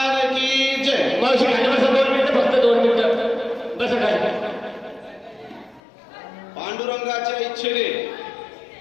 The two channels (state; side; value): drops out; right; at 5.8 s